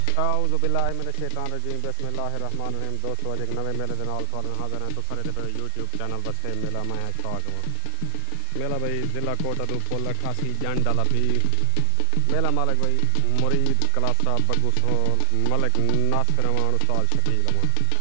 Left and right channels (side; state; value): both; different; correlation 0.00